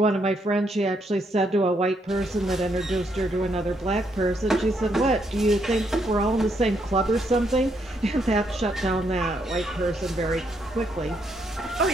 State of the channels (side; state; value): both; normal; correlation 0.75